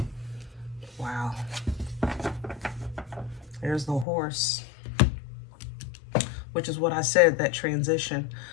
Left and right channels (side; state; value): right; drops out; at 4.0 s